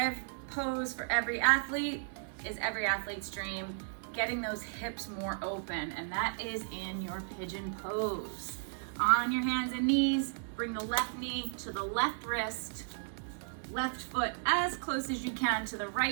pose for every athlete is every athlete's dream. getting those hips more open, and that is in your pigeon pose. On your hands and knees, bring the left knee to the left wrist, left foot as close as you can to the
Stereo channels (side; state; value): left; silent; digital silence